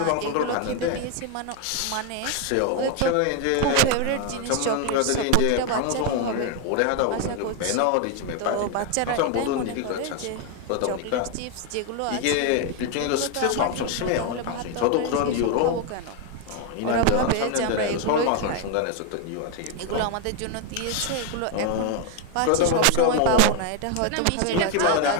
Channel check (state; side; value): different; both; correlation 0.01